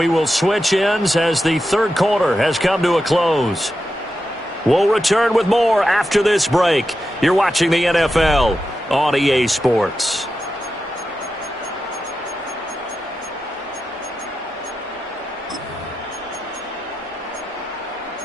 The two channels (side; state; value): both; normal; correlation 0.89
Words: will switch ends as the 3rd quarter has come to a close. We'll return with more after this break. You're watching the NFL on EA Sports.